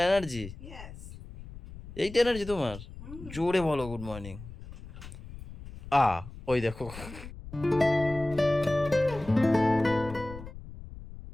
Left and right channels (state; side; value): noise; left; rumble, 14 dB below the sound